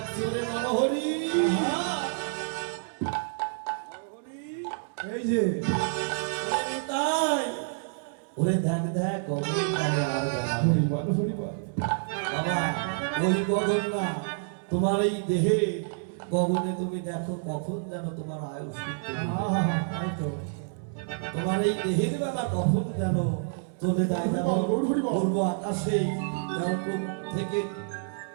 ওরে নরহরি এই যে ওরে নিতাই ওরে দেখ দেখ গগন কালে আর বেলা নেই। হরিবল হরিবল বাবা ওই গগন না তোমার এই দেহে গগনে তুমি দেখো কখন যেন তোমার আয়ুষ তাই তো তোমার এই দেহের বেলা কখন যেন চলে যায় যেমন গৌর হরি বল। পূর্ব আকাশে যেমন পূব থেকে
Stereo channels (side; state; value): left; silent; digital silence